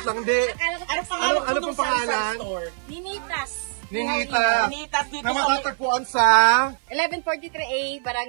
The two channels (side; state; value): left; silent; 58 dB below the other